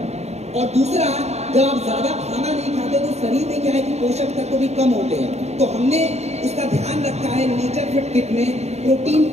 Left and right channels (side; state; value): left; late; 0.31 ms